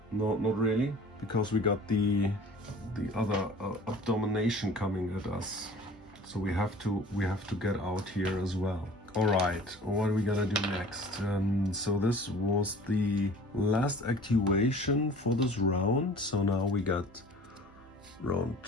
No, not really, because we got the other Abomination coming at us. So we have to get out here as well. All right, what are we gonna do next? So this was the last activation for this round. So now we got round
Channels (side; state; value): both; normal; correlation 0.46